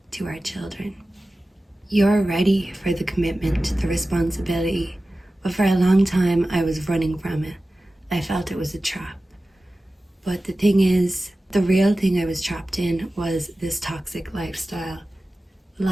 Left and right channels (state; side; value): normal; both; correlation 0.95